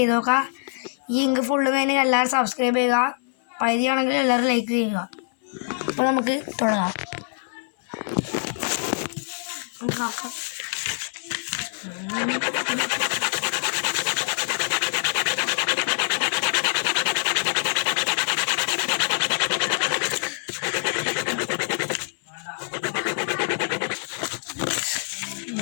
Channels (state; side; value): silent; right; 59 dB below the other